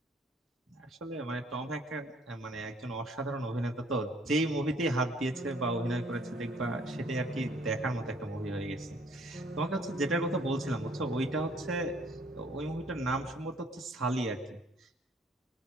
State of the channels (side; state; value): both; normal; correlation 0.60